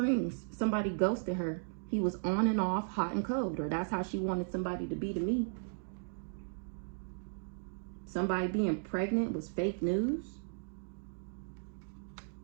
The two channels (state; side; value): silent; left; digital silence